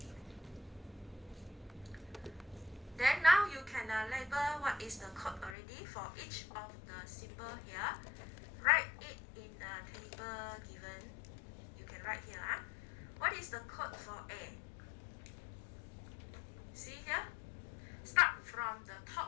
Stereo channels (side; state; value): right; drops out; at 5.6 s